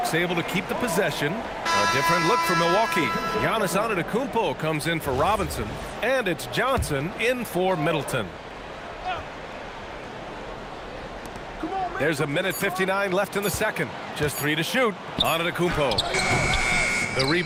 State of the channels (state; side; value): identical; both; correlation 1.00